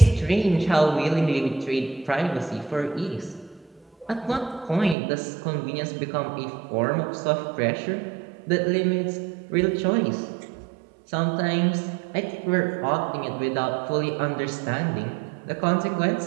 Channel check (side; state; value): left; drops out; at 5.0 s